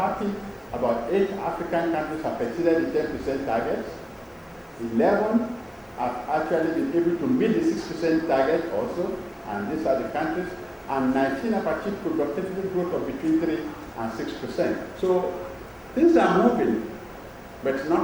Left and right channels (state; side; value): identical; both; correlation 1.00